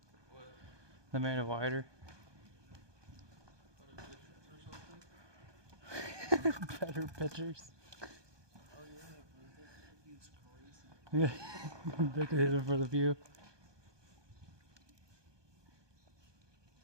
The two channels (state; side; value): late; left; 1.2 ms